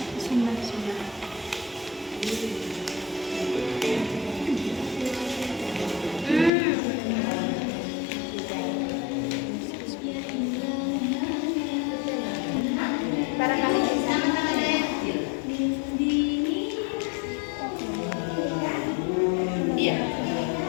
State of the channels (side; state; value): right; drops out; at 6.5 s